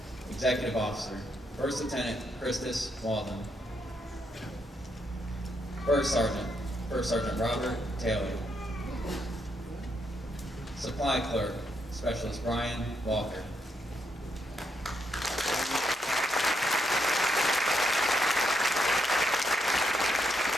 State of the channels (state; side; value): normal; both; correlation 0.79